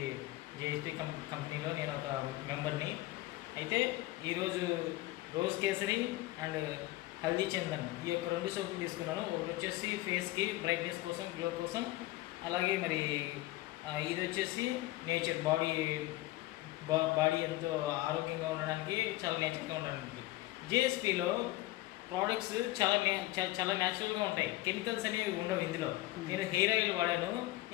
కంపెనీలో నేను ఒక మెంబర్ని. అయితే ఈరోజు రోజ్ కేసరి అండ్ హల్దీ చందన్ ఈ యొక్క 2 సోపులు తీసుకున్నాను. ఒకటి వచ్చేసి ఫేస్కి బ్రైట్నెస్ కోసం, గ్లో కోసం. అలాగే మరి ఇది వచ్చేసి నేచర్ బాడీ ఎంతో ఆరోగ్యంగా ఉండడానికి, చాలా నేచర్గా ఉండడానికి. జేఎస్పీలో ప్రోడక్ట్స్ చాలా న్యాచురల్గా ఉంటాయి. కెమికల్స్ అనేవి ఉండవు ఇందులో. నేను హెయిర్ ఆయిల్ వాడాను.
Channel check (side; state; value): right; quieter; 18.0 dB